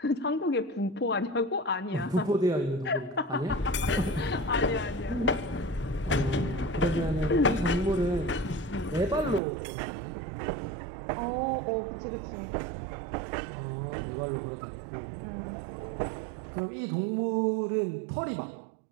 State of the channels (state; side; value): drops out; left; at 9.4 s